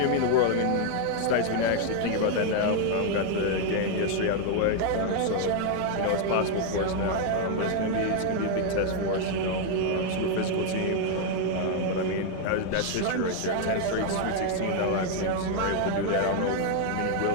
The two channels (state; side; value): different; both; correlation 0.00